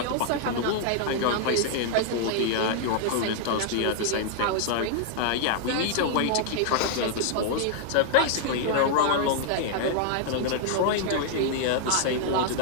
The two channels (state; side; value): different; both; correlation -0.01